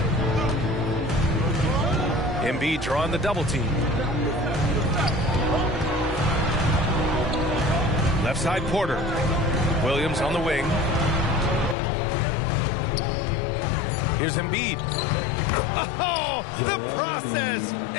Embiid drawing the double team. Left side Porter. Williams on the wing. Here's Embiid. Oh, the process!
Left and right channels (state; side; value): drops out; right; at 11.8 s